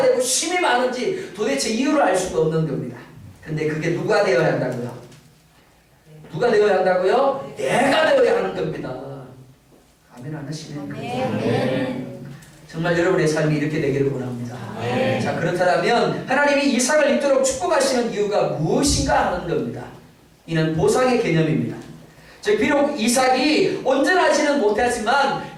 되고 힘이 많은지 도대체 이유를 알 수가 없는 겁니다. 근데 그게 누가 되어야 한다고요? 누가 되어야 한다고요? 내가 되어야 하는 겁니다. 아멘 안 하시네요. 정말 여러분의 삶이 이렇게 되기를 원합니다. 자, 그렇다면 하나님이 이삭을 입도록 축복하시는 이유가 무엇인가 하는 겁니다. 이는 보상의 개념입니다. 즉 비록 이삭이 온전하지는 못하지만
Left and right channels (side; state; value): both; identical; correlation 1.00